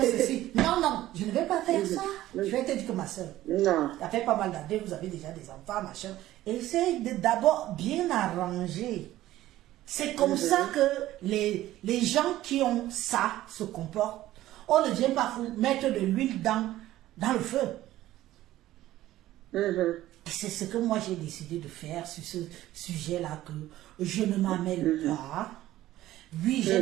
ceci. Non, je ne vais pas faire ça. Je vais te dire que ma soeur, ça fait pas mal d'années, vous avez déjà des enfants, machin. Essaye d'abord bien arranger. C'est comme ça que les gens qui ont ça se comportent. On ne vient pas mettre de l'huile dans le feu. C'est ce que moi j'ai décidé de faire sur ce sujet-là, que je ne m'amène pas. Oui, j'ai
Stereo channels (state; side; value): quieter; left; 14.8 dB